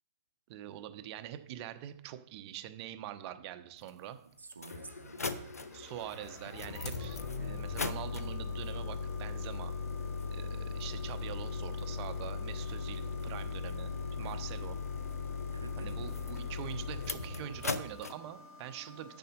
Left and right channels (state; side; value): inverted; both; correlation -0.53